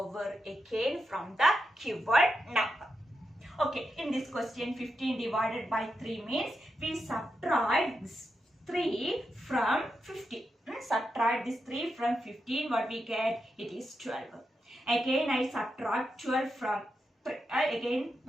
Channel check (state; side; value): normal; both; correlation 0.86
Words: again from the given number. Okay, in this question 15 divided by 3 means we subtract 3 from 15. Subtract this 3 from 15, what we get? It is 12. Again I subtract 12 from 3. Again